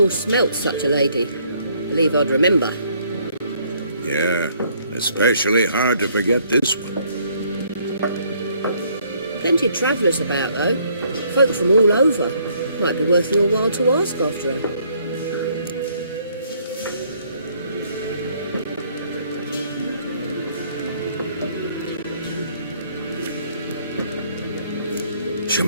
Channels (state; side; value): inverted; both; correlation -0.65